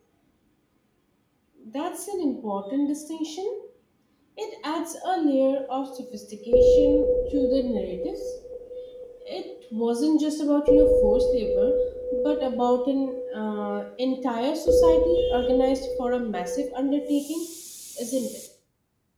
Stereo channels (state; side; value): identical; both; correlation 1.00